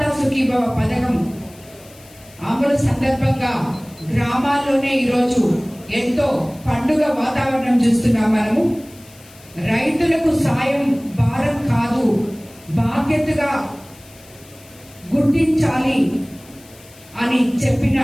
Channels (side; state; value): left; noise; hiss, 24 dB below the sound